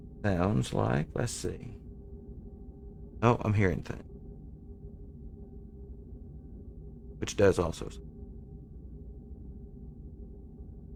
Sounds like, let's see. Oh, I'm hearing things. Which does also.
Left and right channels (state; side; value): identical; both; correlation 1.00